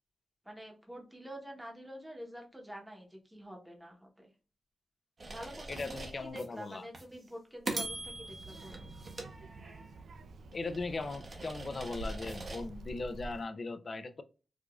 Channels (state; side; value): normal; both; correlation 0.90